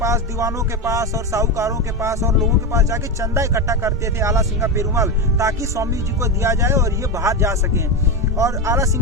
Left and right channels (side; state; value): both; normal; correlation 0.14